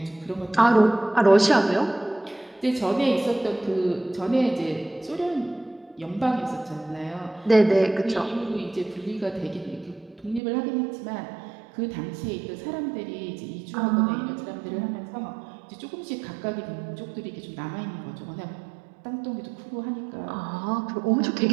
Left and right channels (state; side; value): drops out; left; at 10.4 s